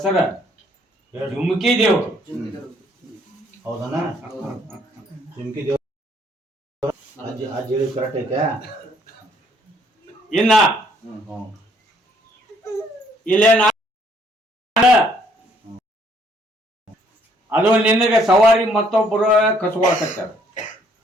ಜುಮ್ಕಿ ದೇವ್ರು. ಹೌದಣ್ಣ? ಜುಮ್ಕಿ ದೇವ್ರ ಅಜ್ಜಿ ಹೇಳಿ ಕರೆಕ್ಟ್ ಐತೆ. ಇನ್ನ ಇಲ್ಲೇ ಅದು ನಿನಗೆ ಸವಾರಿ ಮತ್ತೊಬ್ಬರು ಕಸುವಾಕತ್ತಾರ,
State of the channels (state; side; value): normal; both; correlation 0.65